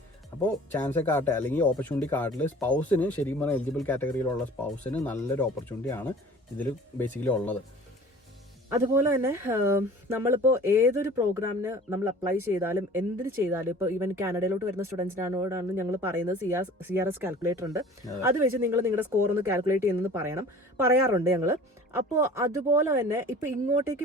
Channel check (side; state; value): both; normal; correlation 0.45